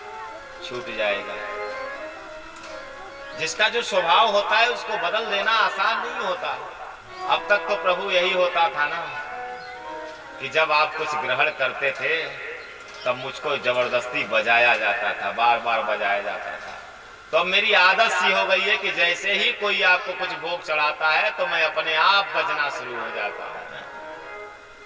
छूट जाएगा। जिसका जो स्वभाव होता है उसको बदल देना आसान नहीं होता। अब तक तो प्रभु यही होता था ना कि जब आप कुछ ग्रहण करते थे तब मुझको जबरदस्ती बजाया जाता था, बार बार बजाया जाता था। तो अब मेरी आदत सी हो गई है कि जैसे ही कोई आपको कुछ भोग चढ़ाता है तो मैं अपने आप बजना शुरू हो जाता हूं।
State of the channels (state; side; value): identical; both; correlation 1.00